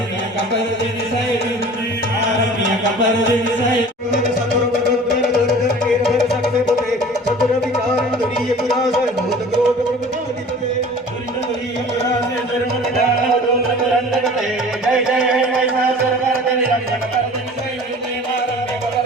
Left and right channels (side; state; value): both; normal; correlation 0.44